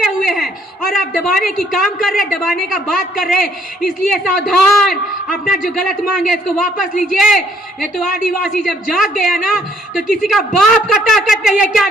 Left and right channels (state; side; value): normal; both; correlation 0.65